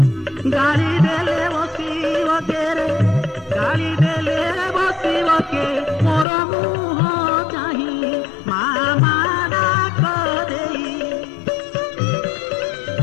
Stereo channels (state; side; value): drops out; right; at 6.2 s